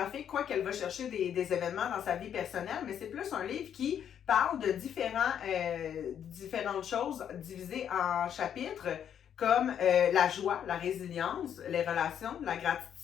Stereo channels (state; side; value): quieter; right; 9.0 dB